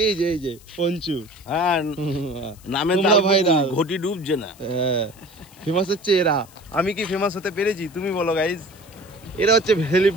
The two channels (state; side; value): noise; left; hiss, 25 dB below the sound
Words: এই যে পঞ্চু। হ্যাঁ, নামে তোমরা ভাইরাল, ঘটি ডুবছে না। হ্যাঁ, ফেমাস হচ্ছে এরা। আমি কি ফেমাস হতে পেরেছি? তুমি বলো গাইজ। এরা হচ্ছে